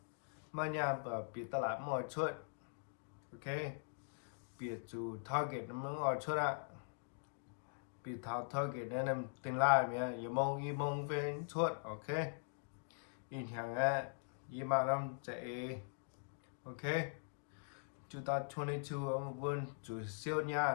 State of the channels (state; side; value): silent; right; digital silence